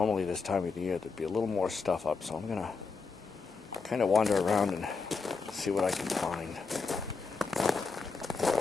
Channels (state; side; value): quieter; right; 4.7 dB